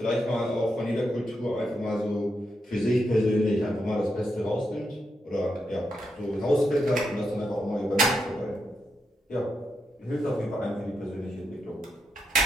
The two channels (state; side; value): normal; both; correlation 0.83